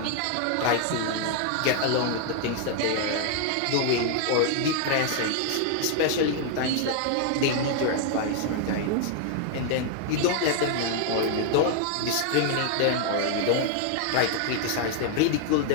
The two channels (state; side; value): different; both; correlation 0.00